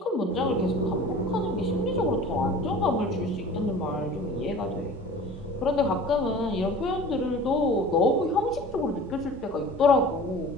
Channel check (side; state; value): both; normal; correlation 0.41